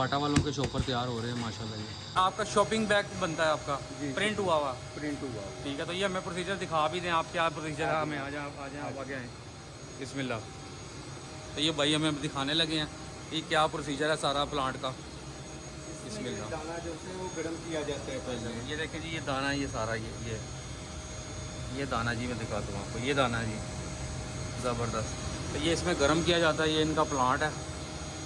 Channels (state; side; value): identical; both; correlation 1.00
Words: वालों के शॉपर तैयार हो रहे हैं माशाल्लाह। ये आपका शॉपिंग बैग बनता है आपका प्रिंट हुआ हुआ? प्रिंट हुआ। ठीक है, तो ये हमें प्रोसीजर दिखा भी दें आप, क्या प्रोसीजर है? हमें आ जाए आप आगे आएँ। बिस्मिल्लाह। तो ये भाई हमें दिखाने लगे हैं कि क्या प्रोसीजर है सारा प्लांट का। बिस्मिल्लाह। दाना जो है वो गर्म किया जाता है पहले। ये देखें जी, ये दाना, ये सारा ये दाना जी, मैं दिखाता हूँ आपको। ये दाना जी ज़बरदस्त। तो ये इसमें गर्म किया जाता है, ये इनका प्लांट है।